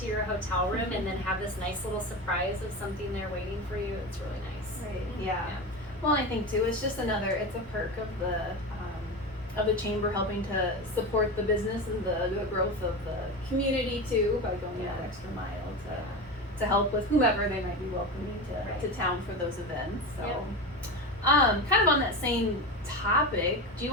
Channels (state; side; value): normal; both; correlation 0.23